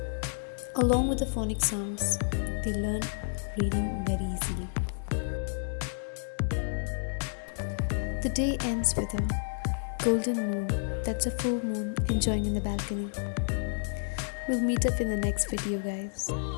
Along with the phonic sounds, they learn reading very easily. The day ends with a golden moon. That's a full moon enjoying in the balcony. We'll meet up in the next video, guys.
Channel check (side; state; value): right; silent; digital silence